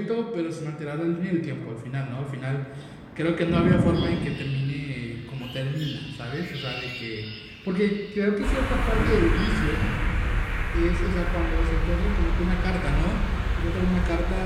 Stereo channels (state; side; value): identical; both; correlation 1.00